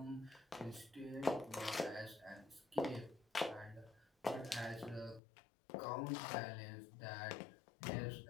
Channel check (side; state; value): right; drops out; at 5.2 s